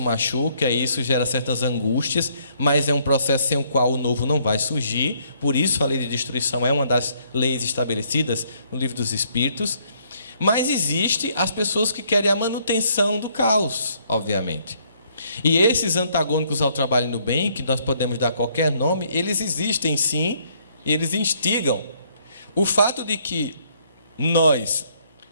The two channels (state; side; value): inverted; both; correlation -0.67